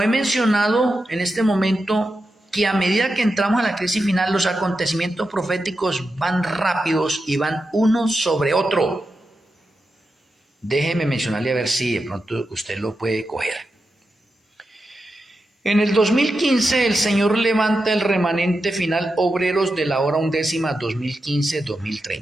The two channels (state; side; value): normal; both; correlation 0.89